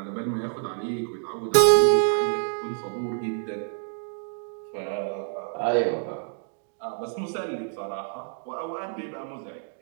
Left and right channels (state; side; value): silent; left; 60 dB below the other